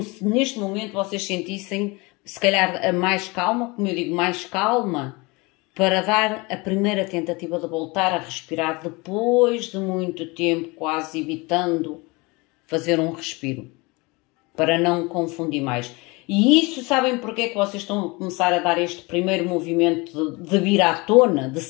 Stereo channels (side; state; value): right; quieter; 25.7 dB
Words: se neste momento vocês sentissem, se calhar, a mais calma, como eu digo, mais calma, para dar a primeira tentativa de voltar a respirar depois de muito tempo, quase evitando fazer um respiro, para não confundir mais. E isso, sabem porque é que vocês estão a começar a dar este primeiro movimento de vir à tona, de